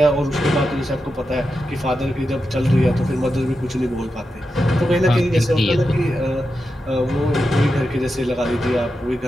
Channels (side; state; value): both; normal; correlation 0.89